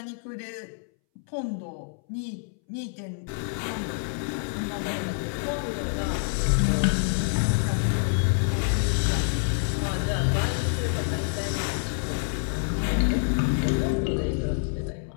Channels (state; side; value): silent; right; 60 dB below the other